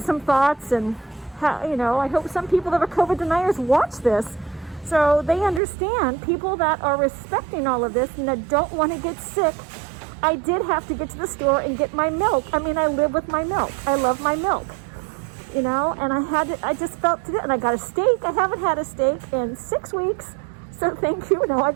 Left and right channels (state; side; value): drops out; left; at 5.6 s